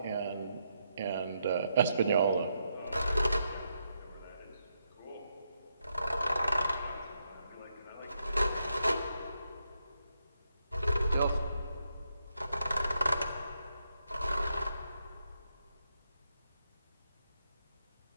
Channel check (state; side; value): inverted; both; correlation -0.81